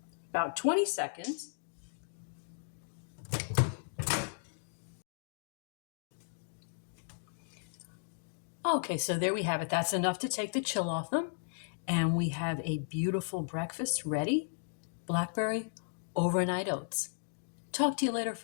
About 20 seconds. Okay, so there we have it. That's enough to take the chill off them. And we have a beautiful breakfast ready. Blackberry Overnight Oats. Talk to you later,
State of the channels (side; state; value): right; silent; digital silence